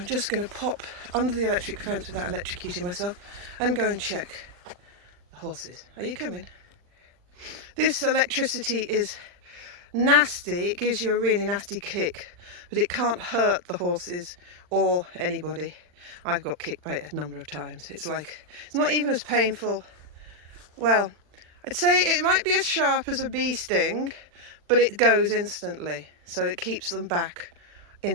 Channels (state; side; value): late; left; 40 ms